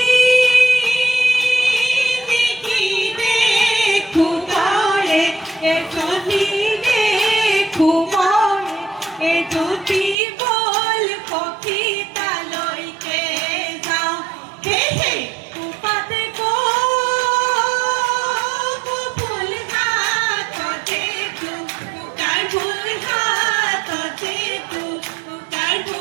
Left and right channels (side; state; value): left; drops out; at 10.2 s